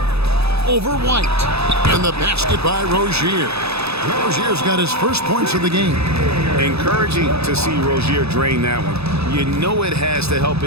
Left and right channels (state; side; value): late; left; 0.79 ms